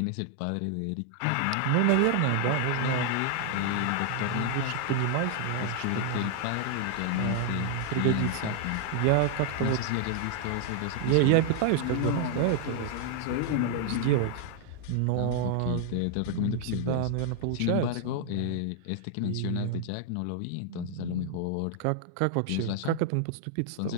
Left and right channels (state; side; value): different; both; correlation 0.00